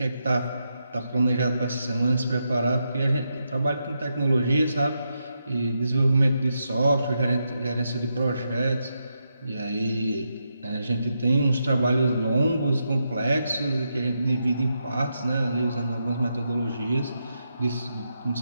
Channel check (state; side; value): inverted; both; correlation -0.84